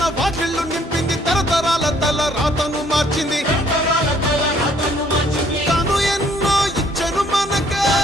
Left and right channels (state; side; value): normal; both; correlation 0.63